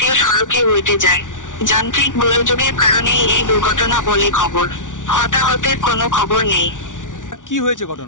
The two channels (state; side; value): late; right; 0.87 ms